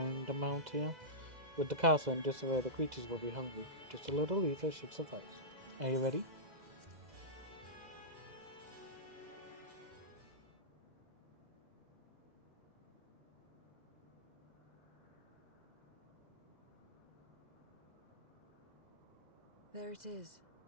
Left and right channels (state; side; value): late; left; 2.0 ms